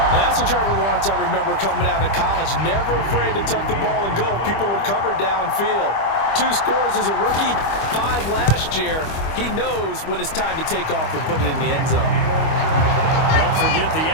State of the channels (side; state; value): right; late; 25 ms